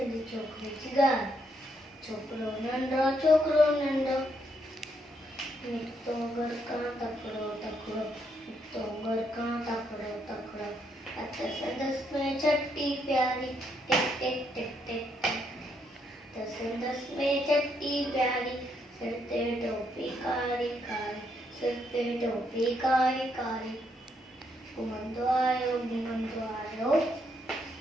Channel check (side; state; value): both; normal; correlation 0.75